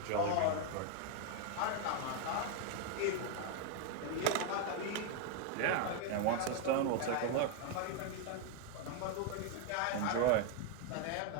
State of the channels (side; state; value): both; different; correlation 0.00